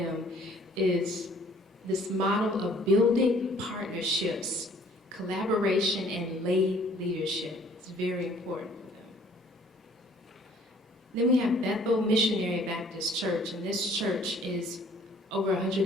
is this model of building partnerships, collaboration, and lay leadership. It's very important for them. Then we have Bethel Missionary Baptist Church, and this church is over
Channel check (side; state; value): both; normal; correlation 0.57